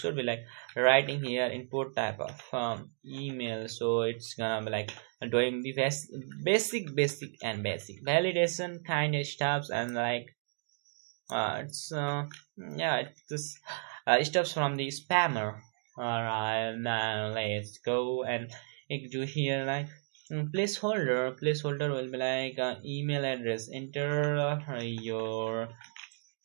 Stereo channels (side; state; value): left; silent; digital silence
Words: be like writing here input type of email. So it's gonna be like doing the basic validation kind of stuffs, and like it's yeah, it's stuffs from the spammer. All right, now let's go and do here like placeholder will be like email address. Enter your